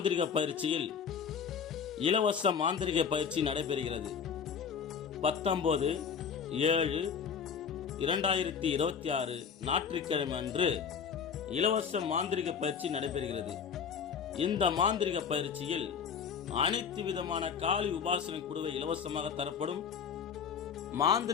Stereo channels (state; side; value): quieter; right; 6.9 dB